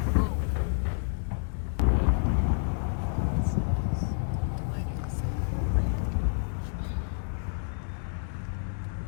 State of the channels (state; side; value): silent; right; digital silence